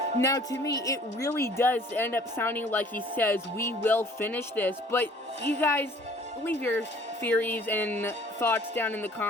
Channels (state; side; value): normal; both; correlation 0.54